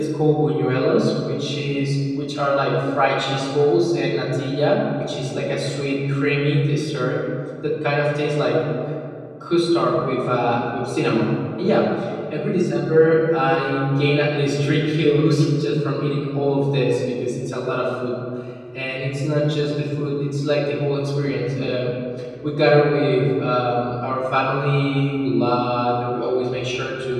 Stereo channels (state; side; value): identical; both; correlation 1.00